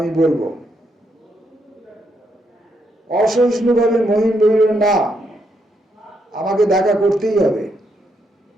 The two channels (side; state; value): both; normal; correlation 0.78